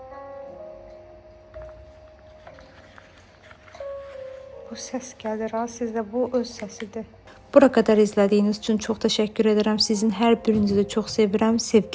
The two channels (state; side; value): identical; both; correlation 1.00